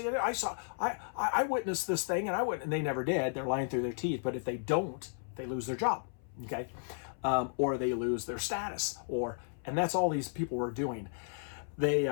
it. I witnessed this thing, and they never did. They're lying through their teeth. But if they don't, they lose their job, okay? Or they lose their status, and that's all these people were doing. They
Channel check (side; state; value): right; silent; 55 dB below the other